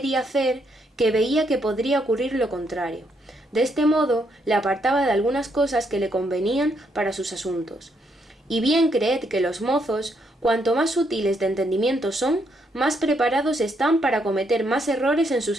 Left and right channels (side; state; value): both; normal; correlation 0.75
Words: hacer, que veía que podría ocurrir lo contrario. De este modo le apartaba de algunas cosas que le convenían para sus asuntos. Y bien creed que los mozos, cuanto más sutiles de entendimiento son, más preparados están para cometer más errores en